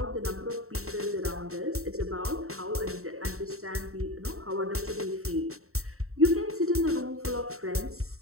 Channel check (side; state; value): left; late; 0.63 ms